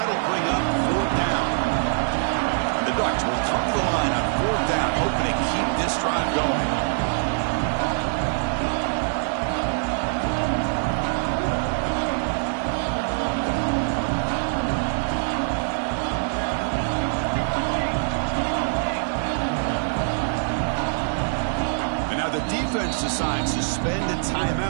bring up fourth down. And the Ducks will come to the line on fourth down, hoping to keep this drive going. Defense decides to spend a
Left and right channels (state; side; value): silent; left; digital silence